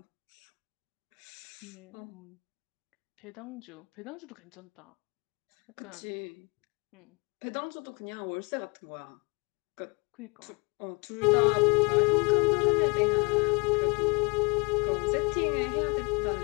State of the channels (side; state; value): right; quieter; 31.0 dB